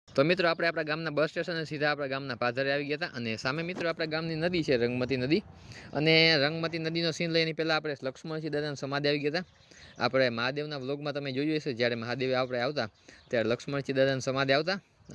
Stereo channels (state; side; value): identical; both; correlation 1.00